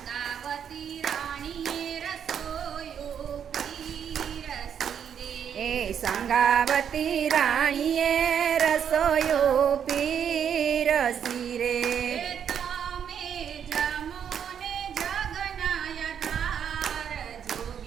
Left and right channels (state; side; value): quieter; left; 8.3 dB